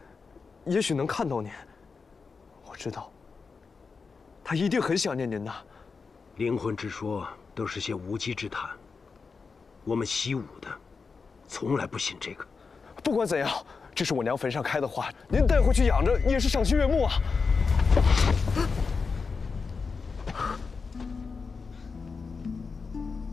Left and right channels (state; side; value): quieter; right; 4.9 dB